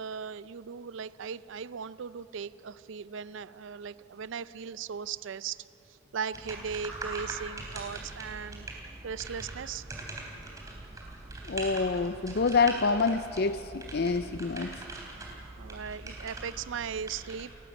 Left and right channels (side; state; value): both; normal; correlation -0.15